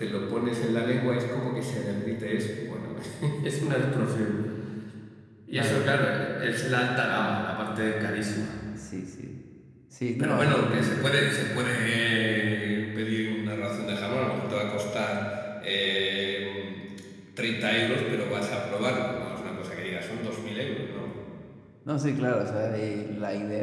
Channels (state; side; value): identical; both; correlation 1.00